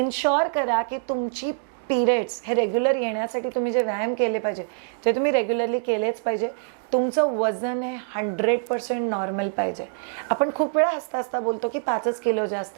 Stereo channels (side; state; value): left; silent; digital silence